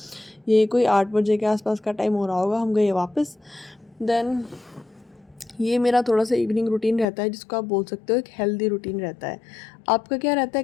ये कोई 8 बजे के आसपास का टाइम हो रहा होगा। हम गए वापस। देन ये मेरा थोड़ा सा इवनिंग रूटीन रहता है, जिसको आप बोल सकते हो एक हेल्दी रूटीन रहता है। आपका क्या रहता है,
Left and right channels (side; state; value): right; drops out; at 7.1 s